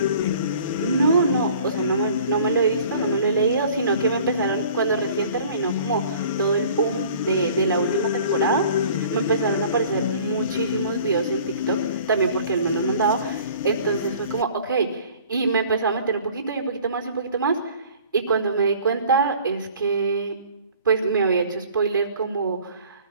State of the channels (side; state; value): both; inverted; correlation -0.50